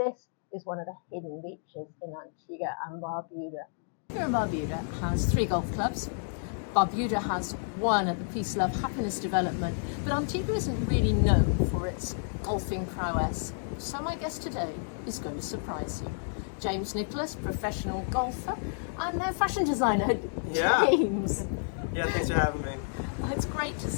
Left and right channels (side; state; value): right; silent; digital silence